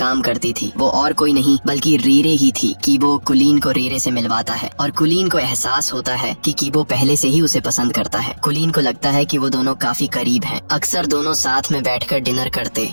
करती थी। वो और कोई नहीं बल्कि रीरे ही थी। कीबो कुलीन को रीरे से मिलवाता है और कुलीन को एहसास होता है कि कीबो पहले से ही उसे पसंद करता है। कुलीन को लगता है कि वो दोनों काफी करीब हैं। अक्सर दोनों साथ में बैठकर डिनर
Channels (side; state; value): both; inverted; correlation -1.00